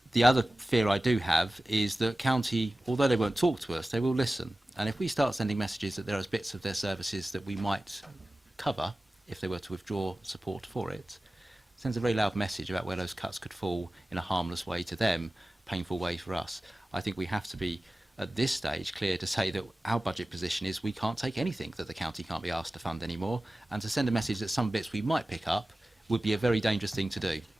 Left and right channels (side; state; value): both; normal; correlation 0.96